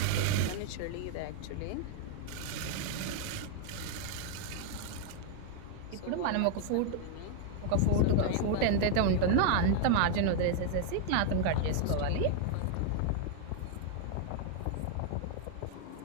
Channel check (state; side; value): different; both; correlation 0.00